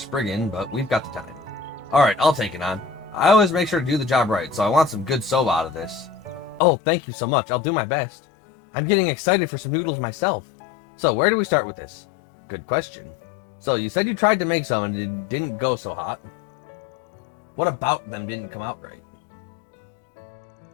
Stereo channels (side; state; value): right; drops out; at 6.6 s